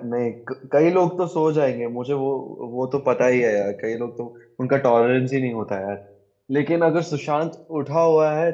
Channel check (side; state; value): both; identical; correlation 1.00